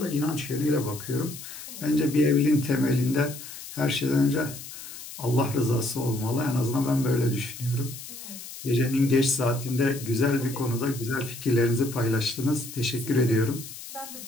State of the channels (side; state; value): left; noise; hiss, 12 dB below the sound